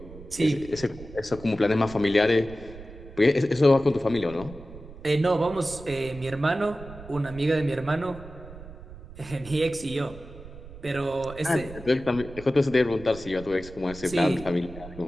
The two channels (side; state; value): right; noise; rumble, 16 dB below the sound